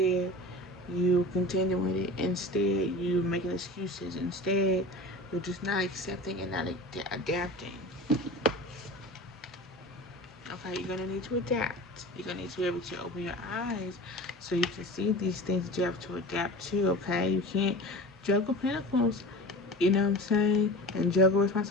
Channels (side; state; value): both; normal; correlation 0.34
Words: you continue with it. Instead, you're making excuses. Instead, you're just not accepting and not adapting. Okay, you're gonna need to adapt. You're gonna need to be able to open your eyes so you can see these things that you have to adapt to. Okay, you can't juggle pentacles. You know what I'm saying? And juggle